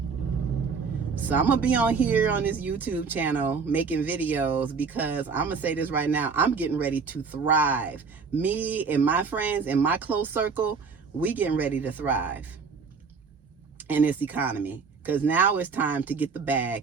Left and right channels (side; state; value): left; quieter; 5.2 dB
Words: So I'm going to be on here on this YouTube channel making videos, because I'm going to say this right now. I'm getting ready to thrive. Me and my friends and my close circle, we getting ready to thrive in this economy. Because now it's time to get the bag,